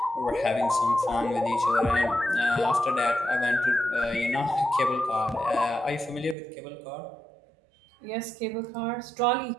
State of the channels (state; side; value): drops out; left; at 6.4 s